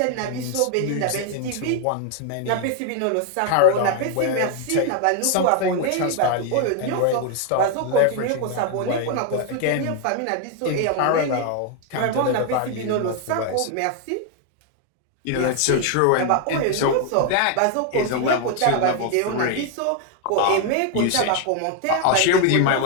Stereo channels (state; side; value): different; both; correlation 0.01